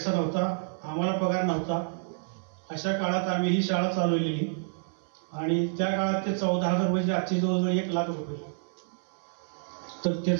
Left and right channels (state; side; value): silent; left; 59 dB below the other